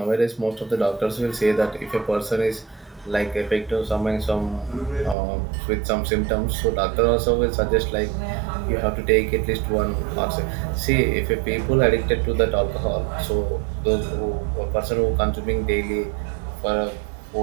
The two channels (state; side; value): drops out; left; at 5.2 s